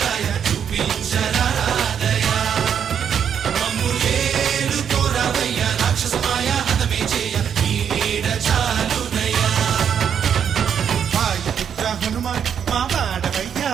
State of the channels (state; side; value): quieter; left; 8.1 dB